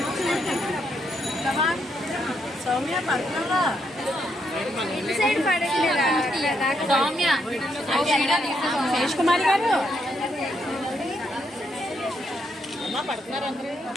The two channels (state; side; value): normal; both; correlation 0.77